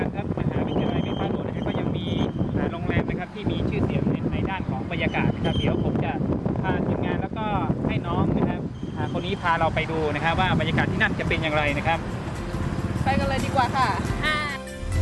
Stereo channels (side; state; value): both; identical; correlation 1.00